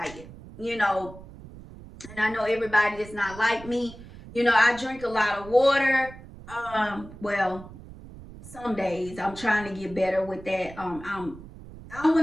and I know everybody is not like me. I drink a lot of water. Well, some days I'm trying to get better with that. I don't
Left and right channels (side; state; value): right; noise; rumble, 17 dB below the sound